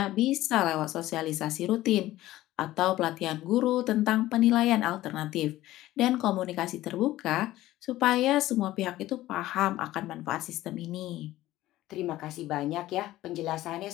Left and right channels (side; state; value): right; quieter; 15.7 dB